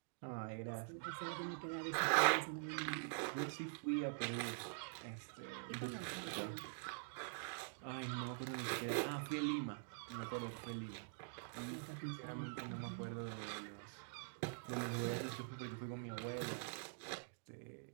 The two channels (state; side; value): silent; left; digital silence